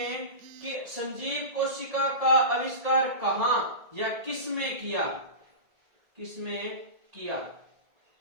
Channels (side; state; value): left; late; 1.7 ms